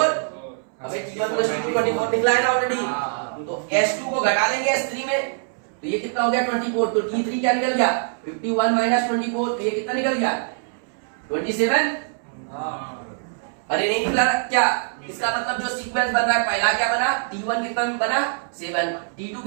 अबे T1 प्लस T2 24 निकला है ना ऑलरेडी, तो S2 को घटा देंगे S3 में, तो ये कितना हो गया 24, तो T3 क्या निकल गया 51 माइनस 24, तो ये कितना निकल गया 27, अरे नहीं निकला क्या, इसका मतलब जो सीक्वेंस बन रहा है पहला क्या बना T1 कितना बना 7, T2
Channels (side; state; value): left; silent; 63 dB below the other